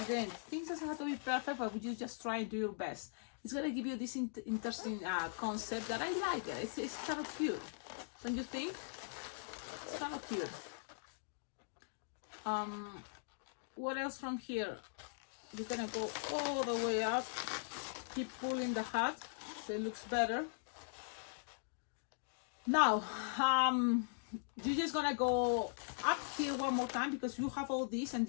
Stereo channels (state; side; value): silent; right; digital silence